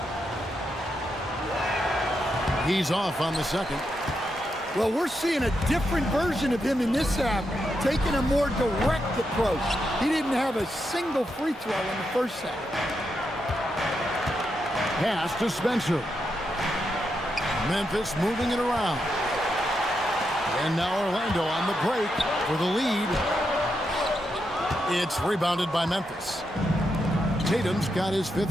He's off on the second. Well, we're seeing a different version of him in this half, taking a more direct approach. He didn't have a single free throw in the first half. Pass to Spencer. Memphis moving it around. And now Orlando on the break for the lead. It's rebounded by Memphis. Tatum's got his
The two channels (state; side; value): normal; both; correlation 0.84